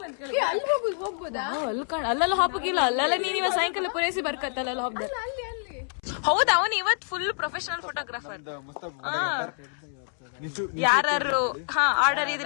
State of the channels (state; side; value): silent; right; 60 dB below the other